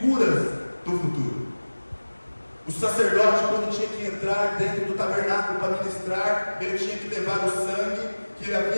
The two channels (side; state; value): both; inverted; correlation -1.00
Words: do futuro. O sacerdote, quando tinha que entrar dentro do tabernáculo para ministrar, ele tinha que levar o sangue que ele